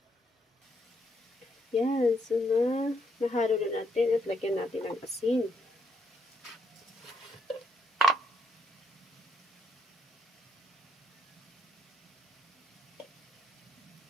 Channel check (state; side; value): normal; both; correlation 0.76